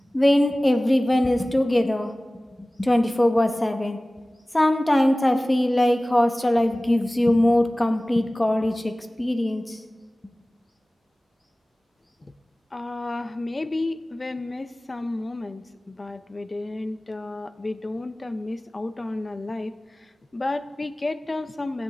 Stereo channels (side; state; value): both; normal; correlation 0.98